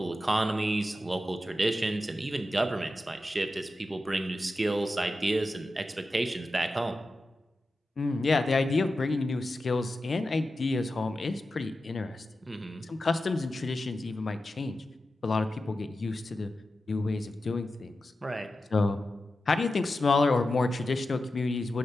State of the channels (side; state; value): both; normal; correlation 0.92